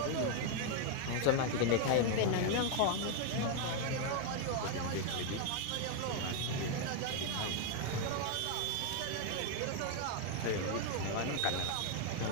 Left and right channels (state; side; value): different; both; correlation 0.01